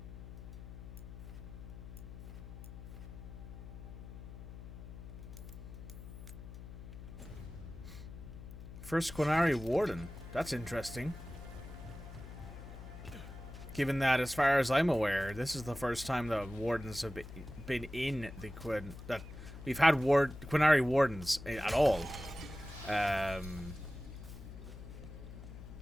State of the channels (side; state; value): left; noise; hum, 12 dB below the sound